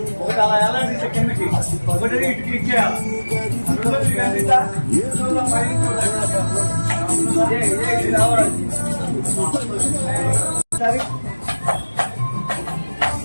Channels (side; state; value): both; inverted; correlation -1.00